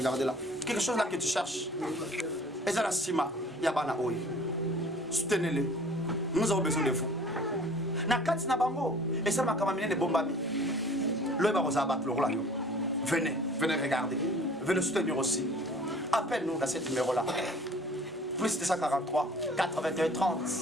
là. Quelque chose là que tu cherches. Et ça la stima, yabana oi. Soutenez-les. Nous avons besoin de vous. Nakati na bango. Et ça m'a kamamine de bombami. Venez, venez regarder. Venez soutenir aussi. Appelle-nous dans ce numéro-là. Plus 243 81 30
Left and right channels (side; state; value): both; normal; correlation 0.49